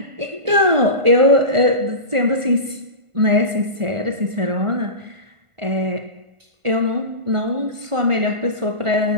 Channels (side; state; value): left; late; 1.4 ms